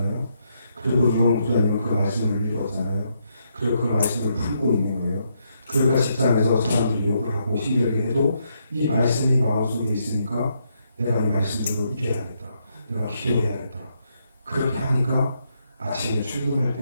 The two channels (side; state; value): both; inverted; correlation -0.78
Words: 그리고 용수자님은 그 말씀을 읽었잖아요. 그리고 그 말씀을 풀고 있는 거예요. 그러니까 직장에서 사람들이 욕을 하고 힘들게 해도 이 말씀이 마음속에 있으니까 내가 이 말씀대로 이겨야겠다. 내가 기도해야겠다. 그렇게 하니까 아침에 출근할